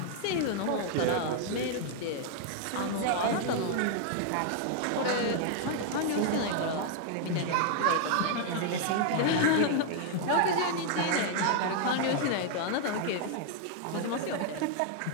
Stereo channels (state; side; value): different; both; correlation 0.00